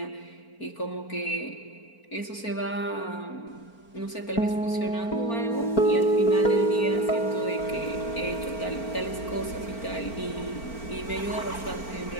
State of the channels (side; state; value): right; late; 4.4 ms